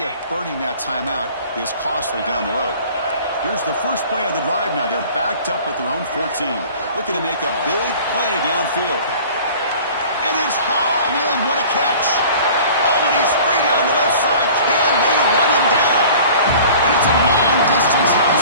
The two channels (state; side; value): inverted; both; correlation -0.45